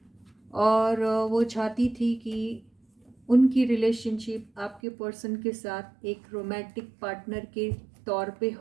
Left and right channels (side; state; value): left; drops out; at 4.8 s